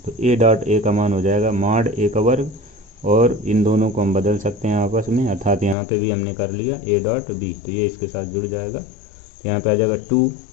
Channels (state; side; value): drops out; right; at 5.8 s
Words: तो a डॉट a का मान हो जाएगा मॉड a का वर्ग और इन दोनों को हम बदल सकते हैं आपस में, अर्थात यहाँ पे भी हमने कर लिया a डॉट b तो ये इसके साथ जुड़ जाएगा। तो यहाँ पे आ जाएगा